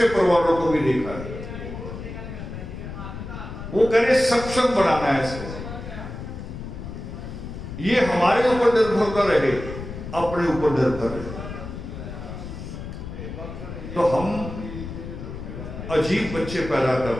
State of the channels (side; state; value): left; noise; rumble, 9 dB below the sound